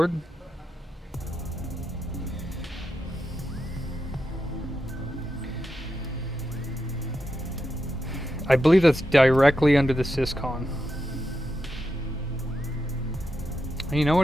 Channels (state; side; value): normal; both; correlation 0.86